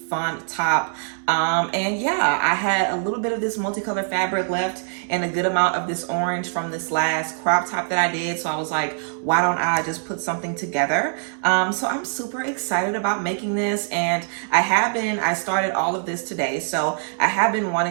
top. And yeah, I had a little bit of this multicolor fabric left and a good amount of this orange from this last crop top that I did. So I was like, why don't I just put something together? So I'm super excited about making this, and I started all of this today. So I have been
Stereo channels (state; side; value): silent; left; digital silence